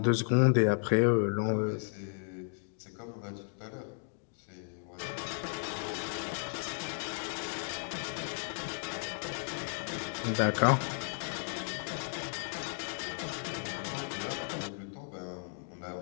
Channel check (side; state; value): right; silent; digital silence